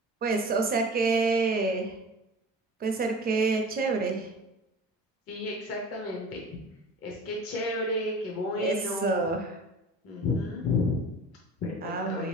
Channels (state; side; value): normal; both; correlation 0.40